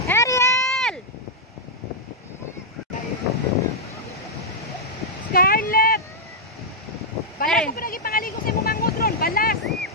Ariel! Scarlett! Balas ko pa lagi pangaligo sa imong mangod ron. Balas!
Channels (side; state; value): both; normal; correlation -0.07